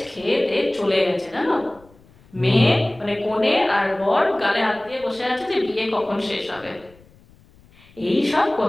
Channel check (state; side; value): noise; left; rumble, 27 dB below the sound